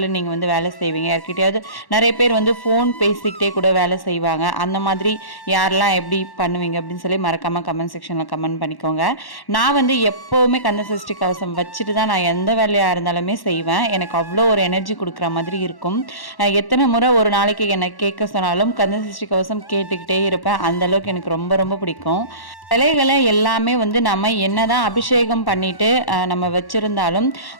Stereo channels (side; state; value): right; late; 1.1 ms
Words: நீங்கள் வந்து வேலை செய்வீங்க? யார்கிட்டையாவது நிறைய பேர் வந்து ஃபோன் பேசிக்கிட்டே கூட வேலை செய்வாங்க. அந்த மாதிரி யாரெல்லாம் எப்படி பண்ணுவீங்க அப்படின்னு சொல்லி மறக்காமல் கமெண்ட் செக்ஷனில் கமெண்ட் பண்ணிக்கோங்க. நான் வந்து எப்போவுமே கந்தசஷ்டி கவசம் வச்சுட்டு தான் நான் எந்த வேலையாக இருந்தாலுமே செய்வேன். எனக்கு அவ்வளோ ஒரு எனர்ஜி கொடுக்குற மாதிரி இருக்கும். எத்தனை முறை ஒரு நாளைக்கு என்னை கேட்க சொன்னாலும் கந்தசஷ்டி கவசம் கேட்டுக்கிட்டே இருப்பேன். அந்தளவுக்கு எனக்கு ரொம்ப ரொம்ப பிடிக்கும். சிலைகளை எல்லாமே வந்து நம்ம என்னதான் அபிஷேகம் பண்ணிட்டு நம்ம வச்சுருந்தாலும்